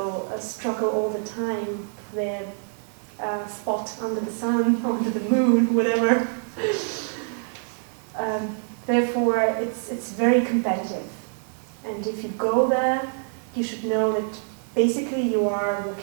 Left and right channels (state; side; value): silent; left; 61 dB below the other